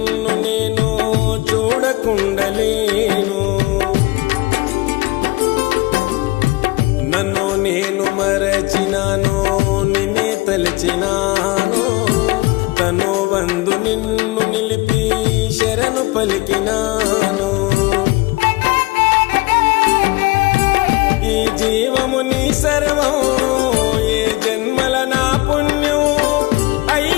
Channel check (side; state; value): right; quieter; 22.4 dB